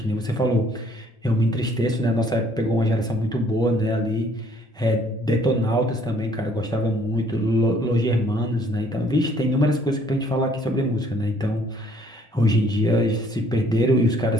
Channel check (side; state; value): both; normal; correlation 0.61